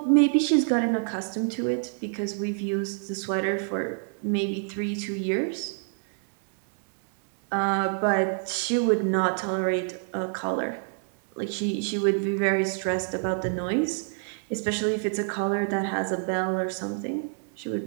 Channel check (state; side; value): silent; left; 60 dB below the other